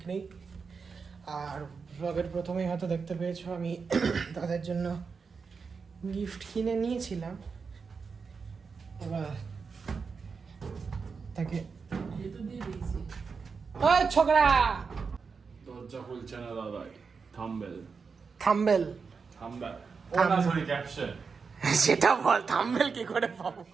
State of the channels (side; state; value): left; quieter; 5.3 dB